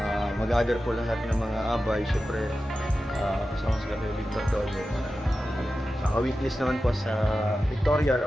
mag-gather po lahat ng mga abay. Siyempre, kasama sa Cafe Victor doon. Weeklies naman po sa Victoria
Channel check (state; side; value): normal; both; correlation 0.93